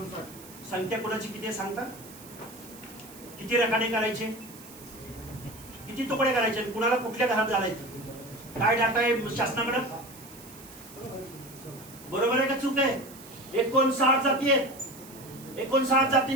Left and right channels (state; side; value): noise; right; hiss, 19 dB below the sound